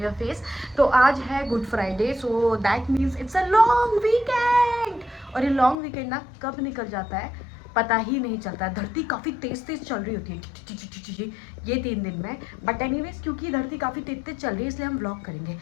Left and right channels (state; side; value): drops out; right; at 5.8 s